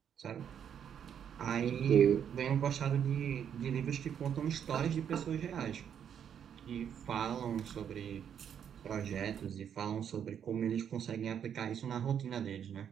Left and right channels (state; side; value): quieter; left; 8.6 dB